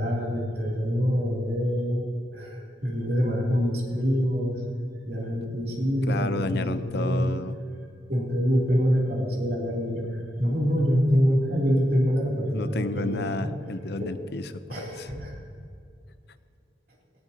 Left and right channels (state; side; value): normal; both; correlation 0.84